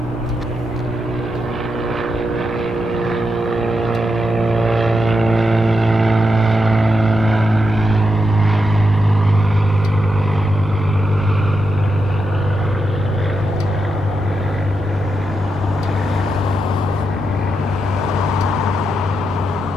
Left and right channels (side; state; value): both; normal; correlation 0.85